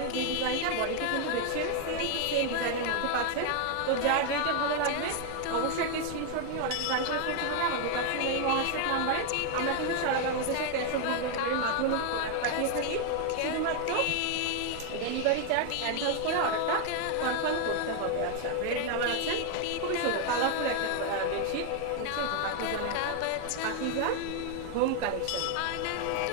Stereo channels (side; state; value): both; different; correlation 0.01